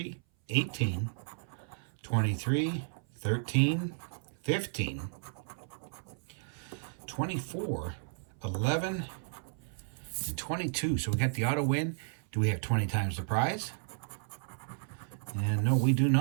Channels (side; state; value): left; silent; 56 dB below the other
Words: 18, 23, 13, 15, 24, 11, and 22. So we got the auto win. Do we have 20 times the prize? And no, we do